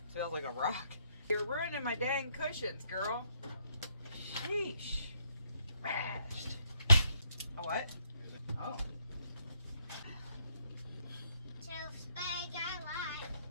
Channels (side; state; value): both; inverted; correlation -0.73